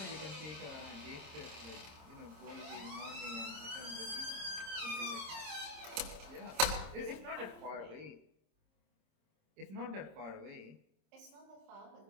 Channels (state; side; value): late; left; 26 ms